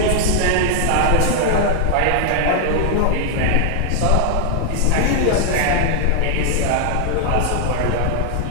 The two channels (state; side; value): different; both; correlation 0.00